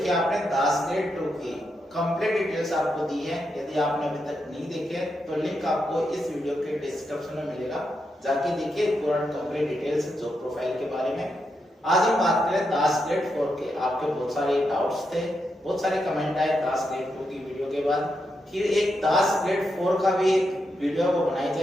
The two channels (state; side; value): normal; both; correlation 0.84